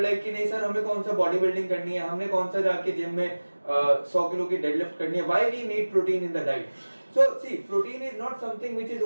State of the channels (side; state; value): both; inverted; correlation -1.00